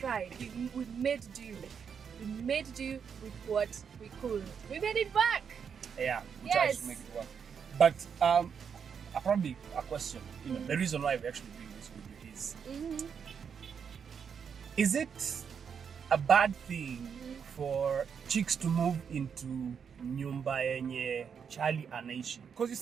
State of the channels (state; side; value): quieter; left; 6.9 dB